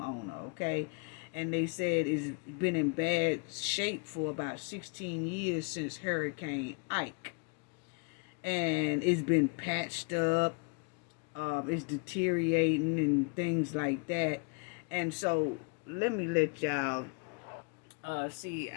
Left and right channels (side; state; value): right; quieter; 34.7 dB